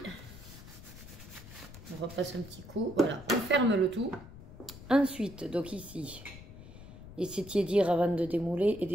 on repasse un petit coup. Voilà, on ferme le tout. Ensuite, donc ici, laissez tiédir avant de démouler et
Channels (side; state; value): left; noise; rumble, 16 dB below the sound